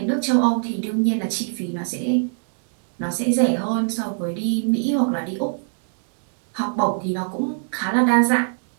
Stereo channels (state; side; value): silent; left; digital silence